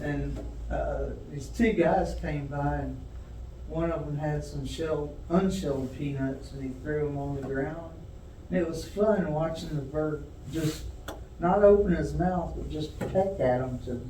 And these two guys came by, and one of them had some unshelled peanuts, and he threw them on the ground. And it was fun watching the bird just not open his mouth, but just peck at them to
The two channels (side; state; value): both; identical; correlation 1.00